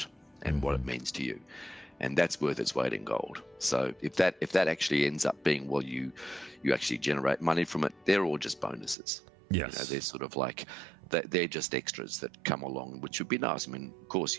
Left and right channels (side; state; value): left; drops out; at 9.0 s